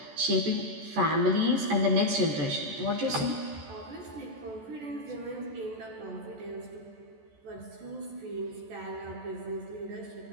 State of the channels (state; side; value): late; left; 14 ms